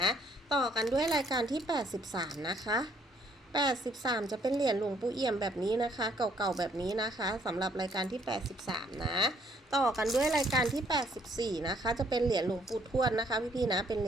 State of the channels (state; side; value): normal; both; correlation 0.66